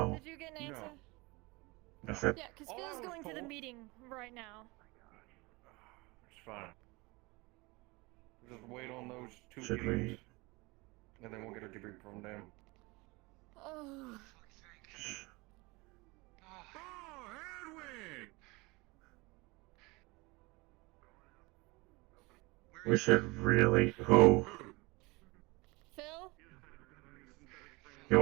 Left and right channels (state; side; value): quieter; left; 24.6 dB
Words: Did you get an answer? I said. Yeah, because Phil's going to the meeting right now. It's fine. Just wait on those two Should we? meetings, and then we'll get a debrief from them. Oh. Oh, Edwin! We should really. Who? Phil? He